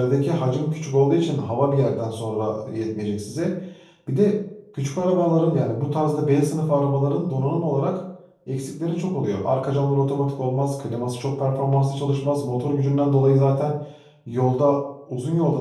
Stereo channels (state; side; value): identical; both; correlation 1.00